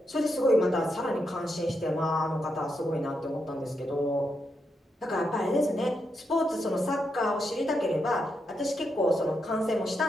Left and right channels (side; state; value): both; normal; correlation 0.83